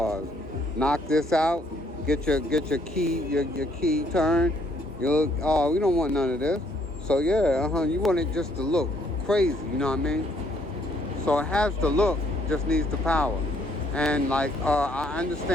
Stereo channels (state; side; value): normal; both; correlation 0.67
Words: Knock this out, get your key turned. We don't want none of this. So yeah, you want it just to look crazy, you know what I mean? So it has the look, just needs the power. And like I